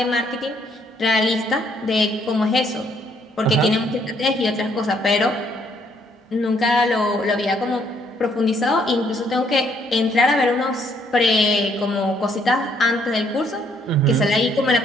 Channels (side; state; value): both; normal; correlation 0.68